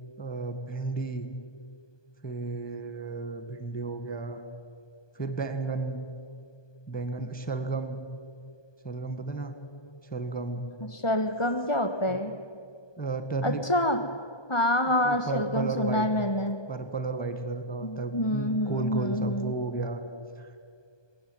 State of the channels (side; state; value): right; late; 1.2 ms